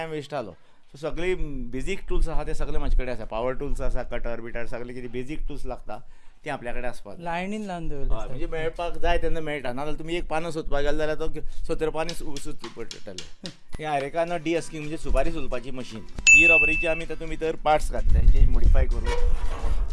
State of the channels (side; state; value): both; identical; correlation 1.00